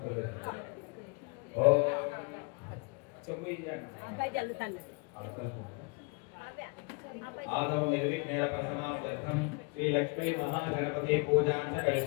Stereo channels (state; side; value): quieter; right; 31.4 dB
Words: ఓ చెప్పు आदौ निर्विघ्नेन प्रथमार्थं శ్రీ లక్ష్మీ మహాగణపతి పూజాంత